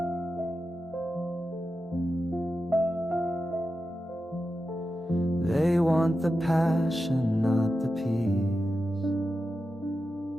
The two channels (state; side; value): normal; both; correlation 0.91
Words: They want the passion, not the peace.